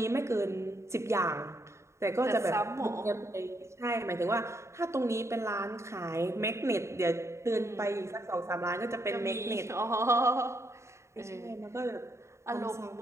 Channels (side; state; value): left; late; 0.14 ms